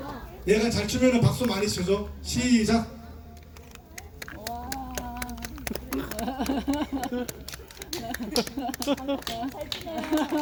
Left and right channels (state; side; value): identical; both; correlation 1.00